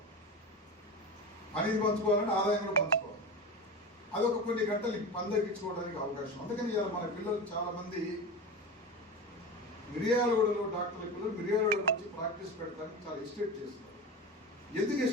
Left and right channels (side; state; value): both; normal; correlation 0.26